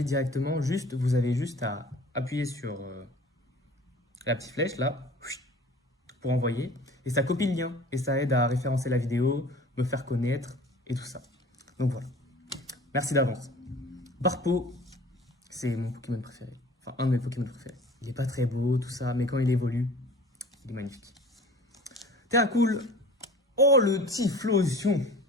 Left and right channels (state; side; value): normal; both; correlation 0.44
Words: directement. Vous avez juste à appuyer sur la petite flèche là. Pour envoyer. Et ça copie le lien. Et ça aide à référencer la vidéo, me faire connaître et tout ça. Donc voilà. Merci d'avance. Barpo, c'est mon Pokémon préféré. Enfin, un de mes Pokémon préférés. Il n'est pas très beau, tout ça, mais quand il évolue, il est magnifique. Terracool. Oh, le Typhlosion.